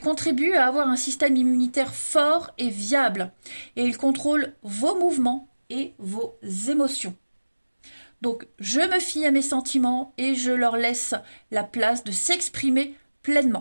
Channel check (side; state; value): both; inverted; correlation -1.00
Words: à avoir un système immunitaire fort et viable. Et il contrôle vos mouvements et vos émotions. Donc, je me fie à mes sentiments et je leur laisse la place de s'exprimer